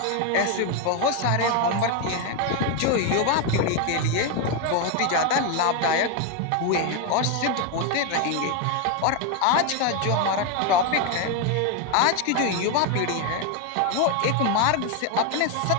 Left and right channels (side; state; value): both; different; correlation 0.01